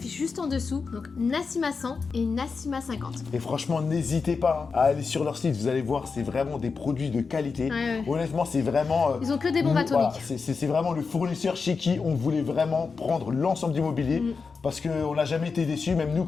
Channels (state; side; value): quieter; right; 4.9 dB